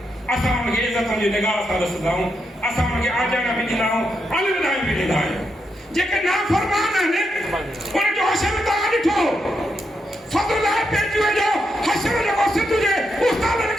असां उनखे इज़त जी निगाह सां ॾिसंदा आहियूं, असां उनखे आजाना बि ॾींदा आहियूं, अलविदायूं बि ॾींदा आहियूं। जेके नाफ़रमान आहिनि उनजो हशर तव्हां ॾिठो, फज़ल पेचुए जो हशर जेको सिंध जे उस्तादनि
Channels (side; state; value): both; normal; correlation 0.82